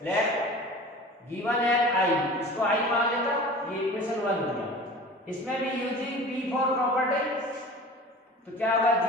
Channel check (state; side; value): normal; both; correlation 0.39